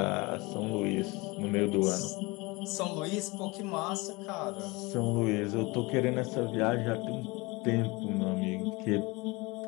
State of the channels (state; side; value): quieter; right; 24.7 dB